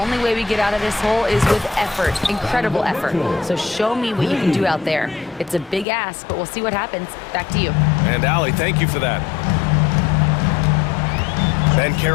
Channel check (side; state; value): right; drops out; at 5.9 s